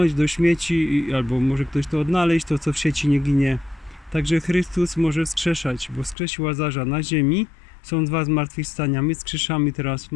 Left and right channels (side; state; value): right; drops out; at 6.2 s